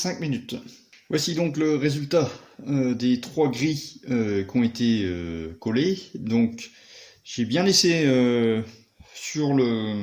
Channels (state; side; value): identical; both; correlation 1.00